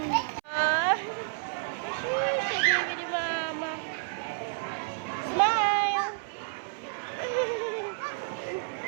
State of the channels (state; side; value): silent; left; 58 dB below the other